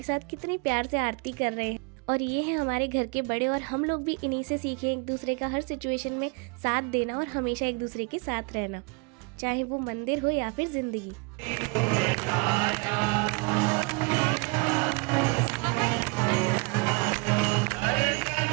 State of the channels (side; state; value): left; quieter; 30.5 dB